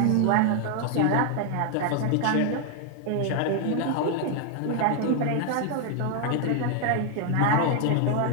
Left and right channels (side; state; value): both; different; correlation 0.00